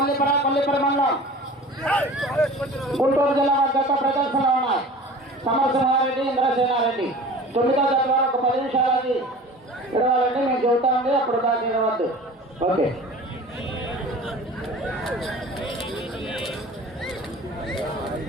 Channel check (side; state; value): both; normal; correlation 0.40